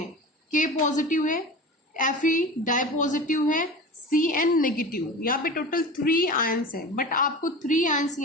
K पॉजिटिव है, Fe डाई पॉजिटिव है, Cn नेगेटिव, यहाँ पे टोटल 3 आयंस है। बट आपको 3 आयंस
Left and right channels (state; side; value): normal; both; correlation 0.33